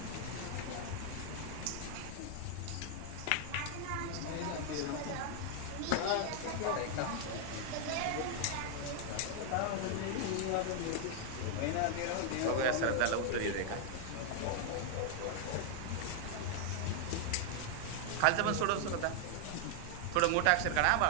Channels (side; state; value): both; different; correlation 0.00